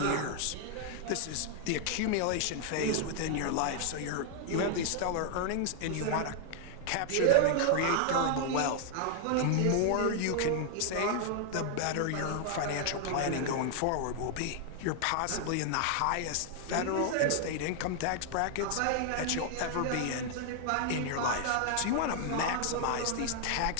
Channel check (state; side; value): different; both; correlation 0.00